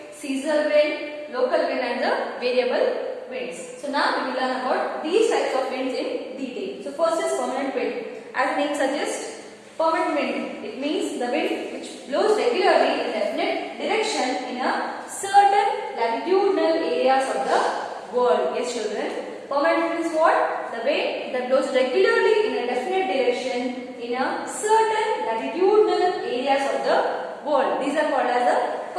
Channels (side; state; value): both; identical; correlation 1.00